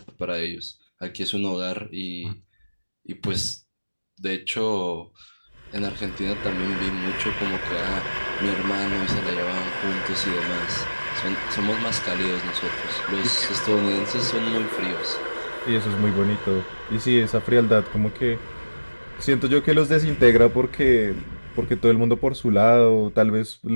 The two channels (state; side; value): inverted; both; correlation -1.00